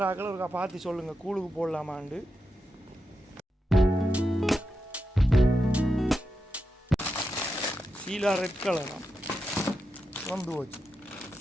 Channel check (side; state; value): both; normal; correlation 0.87